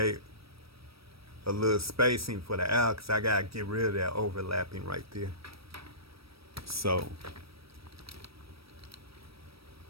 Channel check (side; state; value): left; late; 0.76 ms